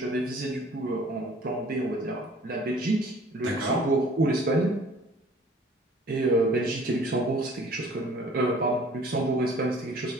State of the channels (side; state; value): both; normal; correlation 0.52